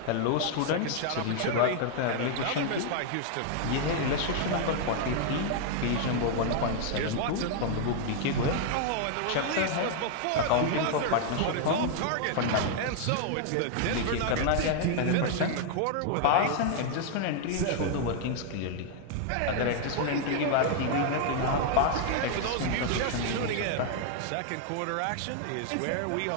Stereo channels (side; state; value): both; different; correlation 0.00